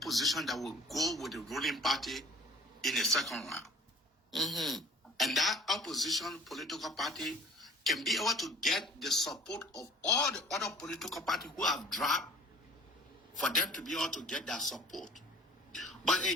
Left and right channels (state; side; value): normal; both; correlation 0.48